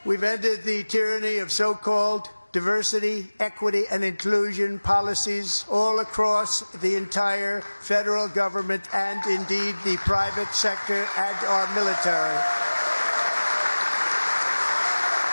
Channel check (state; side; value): inverted; both; correlation -1.00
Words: We've ended the tyranny of so-called diversity, equity, and inclusion policies all across the entire federal government and indeed the private sector and our military.